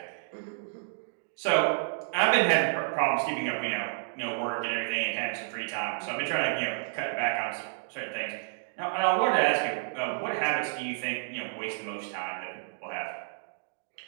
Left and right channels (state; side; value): silent; left; digital silence